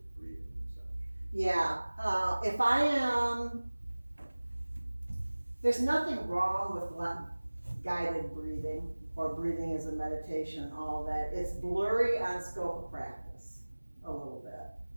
breathing massage? Yeah, if I am, there's nothing wrong with guided breathing or breathing as a meditation, all of that. It's blurry on scope of practice a little bit.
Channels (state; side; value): inverted; both; correlation -1.00